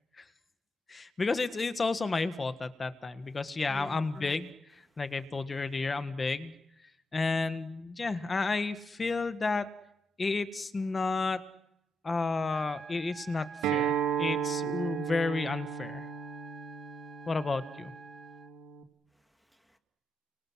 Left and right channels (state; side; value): normal; both; correlation 0.83